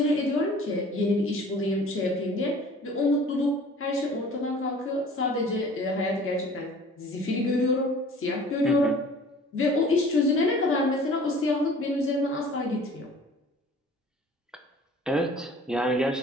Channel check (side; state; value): both; normal; correlation 0.48